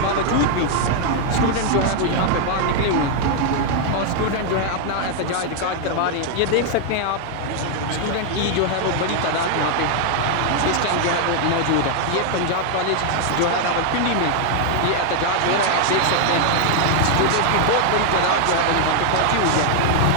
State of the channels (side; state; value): both; different; correlation 0.00